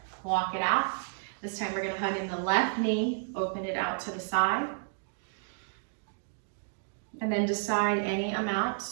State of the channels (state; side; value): silent; left; digital silence